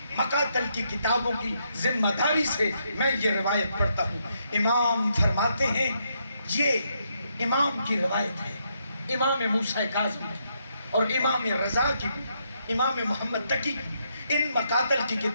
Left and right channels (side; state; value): both; inverted; correlation -0.77